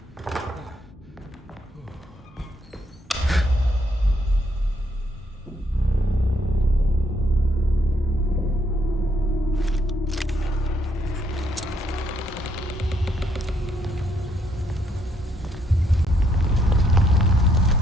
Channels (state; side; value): normal; both; correlation 0.72